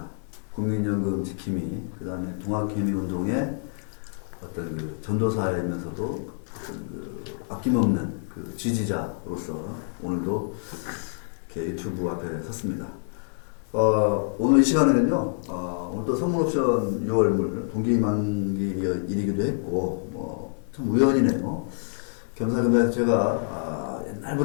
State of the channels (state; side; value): silent; right; digital silence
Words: 국민연금 지킴이, 그 다음에 동학개미운동의 어떤 그 전도사이면서도 어떤 그 아낌없는 그 지지자로서 오늘도 이렇게 유튜브 앞에 섰습니다. 오늘 이 시간에는요, 오늘 또 선물옵션 6월물 동기만기일이기도 했고, 참 우연이네요. 겸사겸사 제가